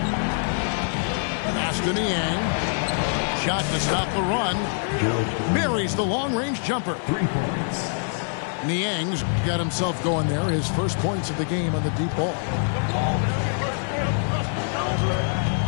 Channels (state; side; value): silent; right; 62 dB below the other